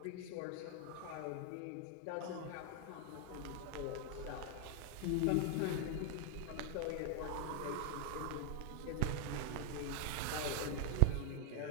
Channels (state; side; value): different; both; correlation 0.00